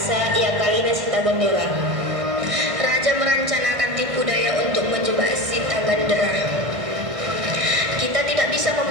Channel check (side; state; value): left; late; 1.6 ms